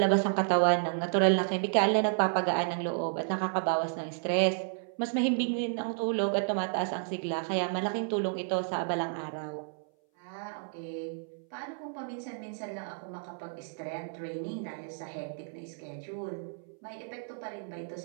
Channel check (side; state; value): left; silent; 57 dB below the other